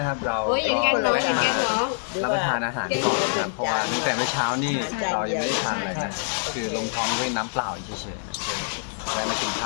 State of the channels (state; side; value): silent; right; digital silence